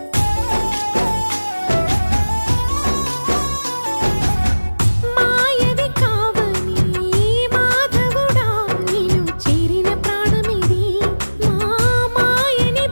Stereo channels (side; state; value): both; inverted; correlation -1.00